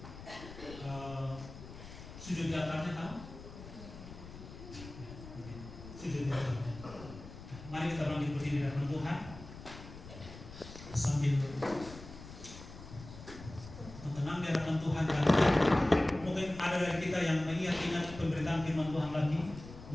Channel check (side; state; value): left; noise; rumble, 14 dB below the sound